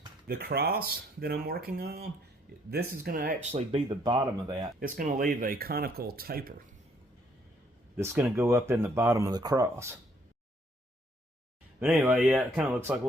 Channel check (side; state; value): both; normal; correlation 0.67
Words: The cross that I'm working on, this is going to actually be the bottom of that. It's going to leave a conical taper that's going to go up in the bottom of the cross. But anyway, yeah, it kind of looks like a